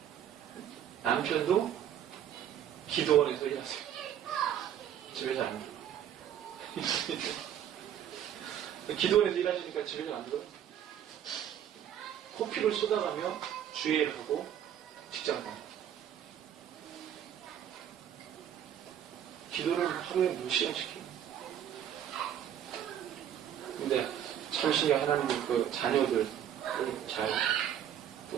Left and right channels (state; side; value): quieter; left; 10.0 dB